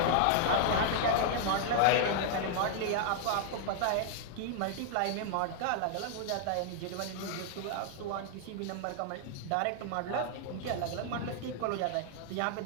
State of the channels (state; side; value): different; both; correlation 0.00